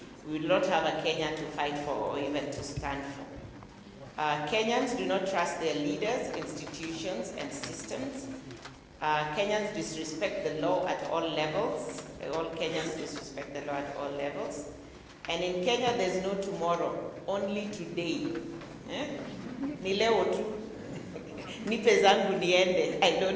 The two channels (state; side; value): identical; both; correlation 1.00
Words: We will not have a Kenya to fight for or even to stand for. Kenyans do not trust their leaders, institutions, and systems. Kenyans disrespect the law at all levels. All Kenyans disrespect the law at all levels. And in Kenya, there's no tomorrow, only today. Ni leo tu. Nipe zangu niende. I